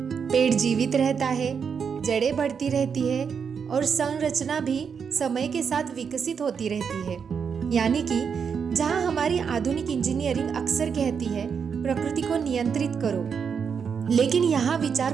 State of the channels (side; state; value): left; quieter; 6.5 dB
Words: पेड़ जीवित रहता है, जड़ें बढ़ती रहती है और संरचना भी समय के साथ विकसित होती रहती है। यानी कि जहां हमारी आधुनिक इंजीनियरिंग अक्सर कहती है प्रकृति को नियंत्रित करो, लेकिन यहाँ